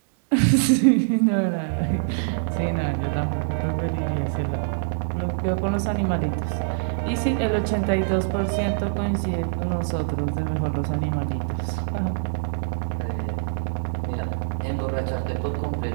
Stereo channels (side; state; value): left; silent; digital silence